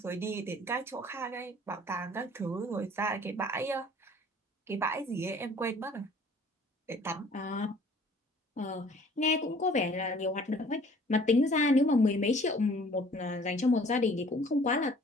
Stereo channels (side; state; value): both; normal; correlation 0.53